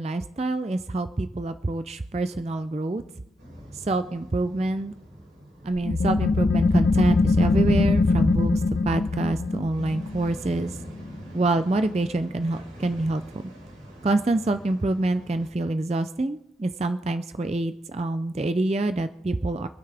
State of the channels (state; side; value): normal; both; correlation 0.81